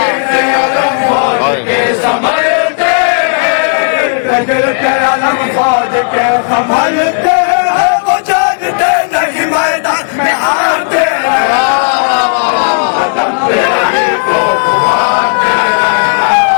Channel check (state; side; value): silent; right; digital silence